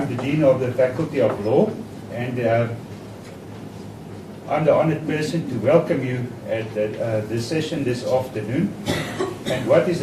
the Dean of the Faculty of Law, and I'm the honored person to welcome you at this session this afternoon. And what is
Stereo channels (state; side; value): identical; both; correlation 1.00